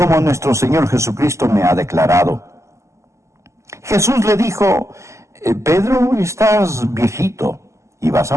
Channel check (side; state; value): left; late; 0.14 ms